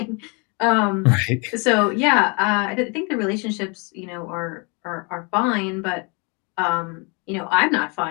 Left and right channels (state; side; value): quieter; right; 32.0 dB